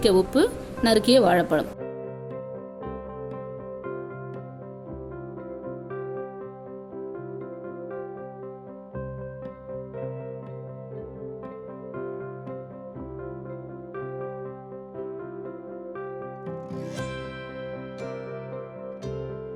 உப்பு, நறுக்கிய வாழைப்பழம்.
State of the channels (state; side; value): identical; both; correlation 1.00